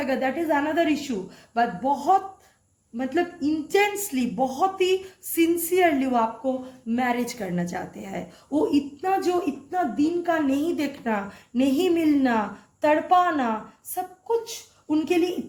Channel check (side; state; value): both; identical; correlation 1.00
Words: that is another issue, but बहुत मतलब इंटेंसली, बहुत ही सिंसियरली वो आपको मैरिज करना चाहते हैं। वो इतना दिन का नहीं देखना, नहीं मिलना, तड़पाना, सब कुछ उनके लिए